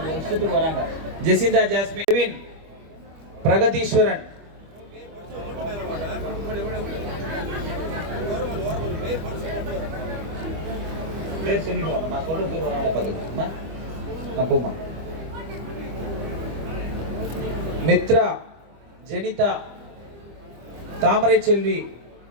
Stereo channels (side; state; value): left; late; 25 ms